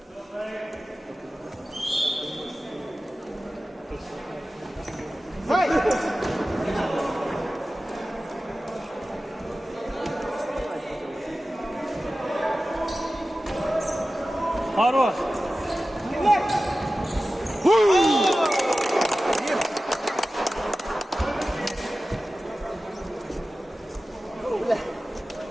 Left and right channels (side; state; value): both; normal; correlation 0.95